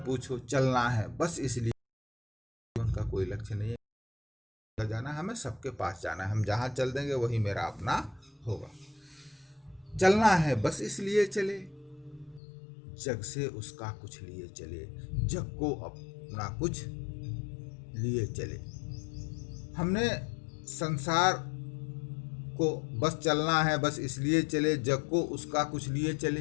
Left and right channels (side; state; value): right; drops out; at 12.4 s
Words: पूछो, चलना है बस इसलिए। जीवन का कोई लक्ष्य नहीं है, जाना हमें सबके पास जाना है। हम जहाँ चल देंगे वही मेरा अपना होगा। चलना है बस इसलिए चले, जग से उसका कुछ लिए चले, जग को अपना कुछ लिए चले। हमने संसार को बस चलना है बस इसलिए चले, जग को उसका कुछ लिए